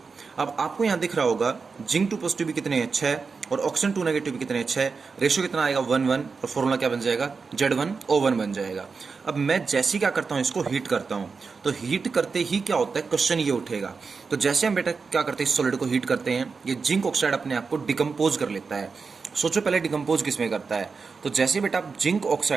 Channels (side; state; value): left; quieter; 4.9 dB